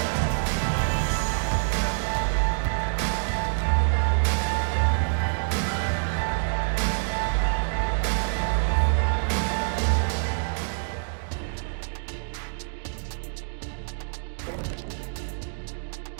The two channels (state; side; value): silent; left; digital silence